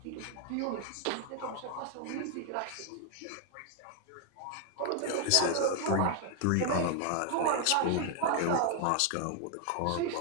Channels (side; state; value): both; different; correlation 0.00